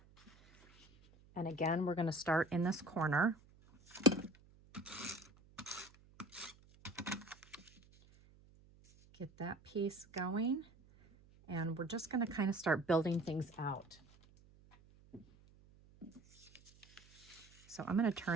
And again, we're going to start in this corner. Get that piece going. And we're just going to kind of start building things out. So I'm going to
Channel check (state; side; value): noise; right; hum, 26 dB below the sound